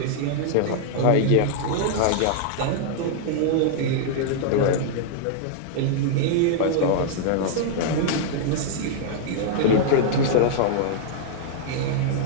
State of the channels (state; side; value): different; both; correlation -0.01